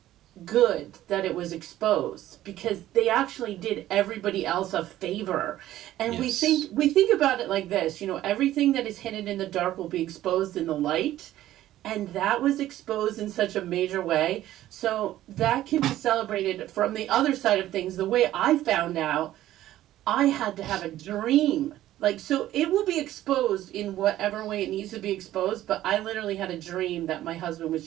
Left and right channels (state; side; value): quieter; left; 13.9 dB